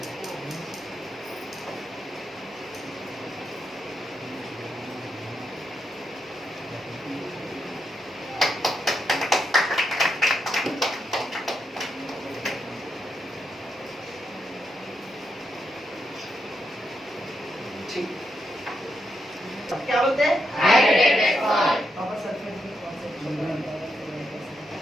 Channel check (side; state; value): both; normal; correlation 0.82